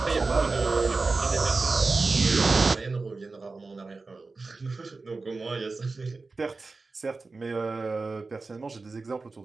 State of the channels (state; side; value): quieter; left; 3.9 dB